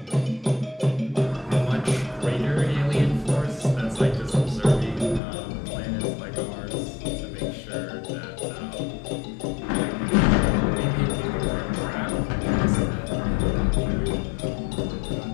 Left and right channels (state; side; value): drops out; right; at 5.2 s